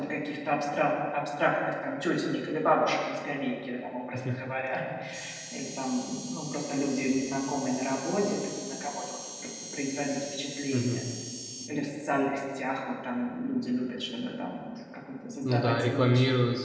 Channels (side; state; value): both; identical; correlation 1.00